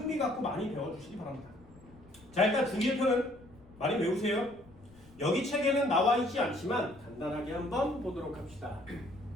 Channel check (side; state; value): left; noise; rumble, 24 dB below the sound